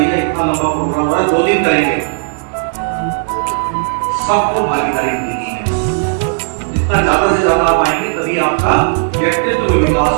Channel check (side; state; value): left; silent; digital silence